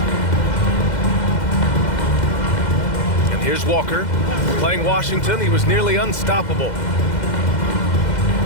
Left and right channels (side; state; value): right; late; 2.1 ms